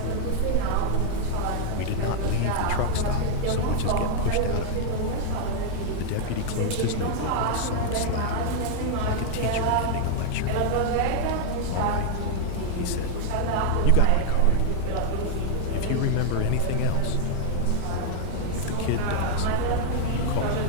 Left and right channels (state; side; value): different; both; correlation 0.00